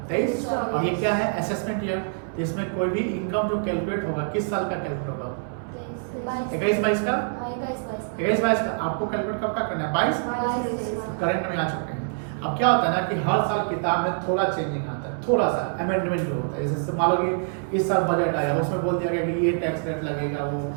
23। और ये क्या है? Assessment year. इसमें कोई भी इनकम जो कैलकुलेट होगा, किस साल का कैलकुलेट होगा? 21-22 का। 21-22 का आपको कैलकुलेट कब का करना है? 22 करंट में आ चुके हैं। अब क्या होता है ना कि हर साल किताब में थोड़ा चेंजिंग आता है, थोड़ा सा अमेंडमेंट जो होता है। जैसे मान लो कि इस साल बजट आया, उसमें बोल दिया गया कि ये टैक्स रेट लगेगा, वो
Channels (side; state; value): left; silent; 61 dB below the other